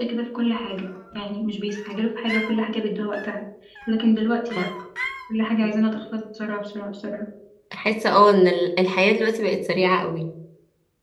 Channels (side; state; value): both; identical; correlation 1.00